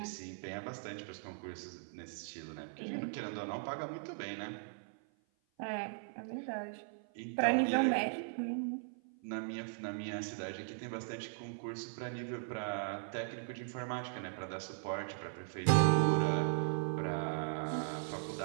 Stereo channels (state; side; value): silent; left; 52 dB below the other